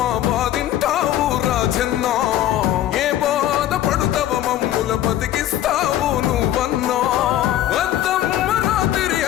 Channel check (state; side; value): quieter; right; 12.7 dB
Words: బాధింటావు రాజన్నా ఏ బాధ పడుతావ మమ్ముల బతికిస్తావు నువ్వన్నా వద్దమ్మ రాత్రి